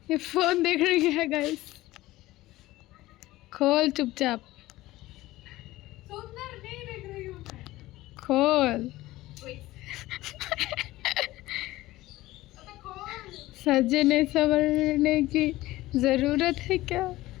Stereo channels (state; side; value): quieter; right; 17.4 dB